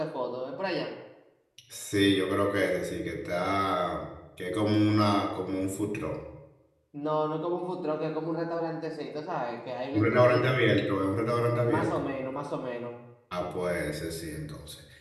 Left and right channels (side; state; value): both; identical; correlation 1.00